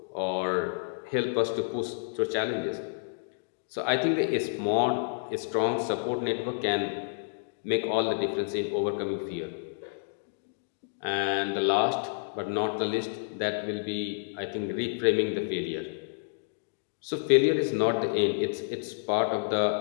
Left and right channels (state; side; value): silent; right; digital silence